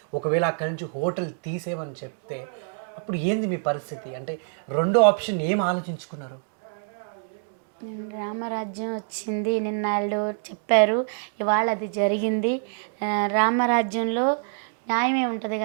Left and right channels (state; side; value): silent; left; digital silence